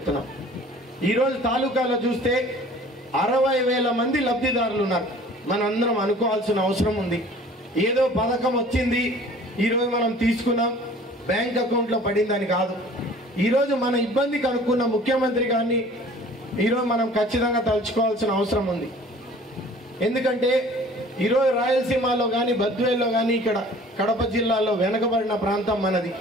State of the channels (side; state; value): both; normal; correlation 0.49